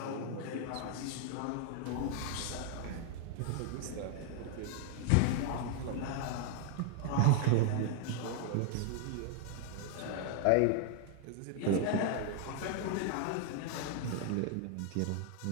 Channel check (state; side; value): different; both; correlation 0.00